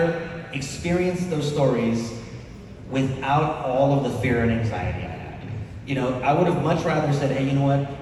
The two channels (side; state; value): both; identical; correlation 1.00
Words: experienced those stories without all of the fear and anxiety I had. I would have much rather said, hey, you know what?